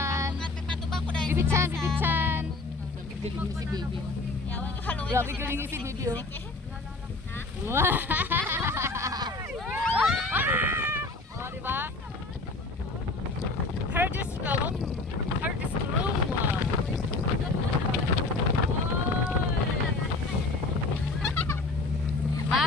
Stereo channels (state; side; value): quieter; right; 3.3 dB